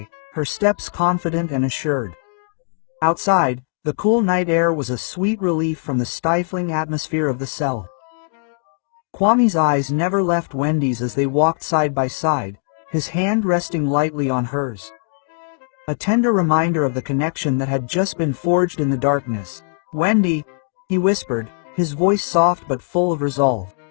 her steps confident and assured. Outside, the cool night air was a sweet relief from the stifling atmosphere of the cell. Kwame's eyes never left Wendy's as they walked side by side, his hand resting lightly on hers. A tender reminder of the connection that had just been forged in the darkness. "Wendy," he whispered, his voice soft but full of resolve.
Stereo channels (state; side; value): silent; right; 65 dB below the other